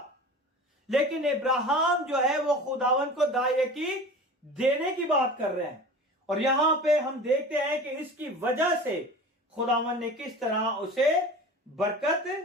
लेकिन इब्राहिम जो है वो खुदावन को दायकी देने की बात कर रहे हैं। और यहां पे हम देखते हैं कि इसकी वजह से खुदावन ने किस तरह उसे बरकत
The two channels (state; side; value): normal; both; correlation 0.37